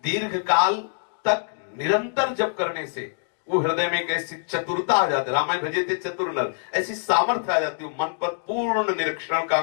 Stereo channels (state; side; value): silent; right; digital silence